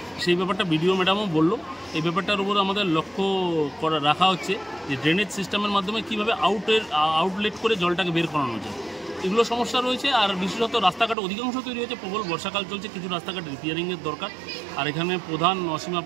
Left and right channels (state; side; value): drops out; left; at 11.2 s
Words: সেই ব্যাপারটা বিডিও ম্যাডামও বললো। এই ব্যাপারটার উপর আমাদের লক্ষ্য রাখা হচ্ছে যে ড্রেনেজ সিস্টেমের মাধ্যমে কীভাবে আউটলেট করে জলটাকে বের করানো যায়। এগুলো সমস্যা রয়েছে। আর বিশেষত রাস্তাঘাট অধিকাংশ তৈরি হয়েছে, প্রবল বর্ষাকাল চলছে, কিছু রাস্তাঘাট রিপেয়ারিংয়ের দরকার। আর এখানে প্রধান অসীমা